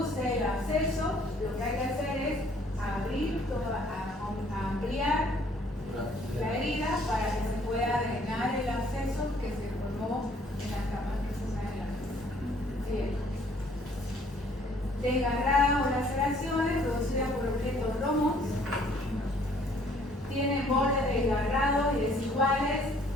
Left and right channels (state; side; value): normal; both; correlation 0.60